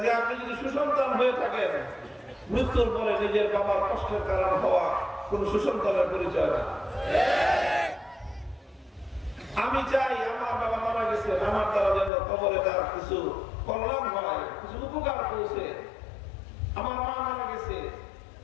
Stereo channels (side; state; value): right; drops out; at 12.1 s